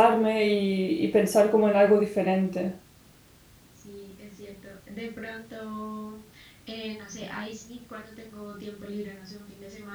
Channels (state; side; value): identical; both; correlation 1.00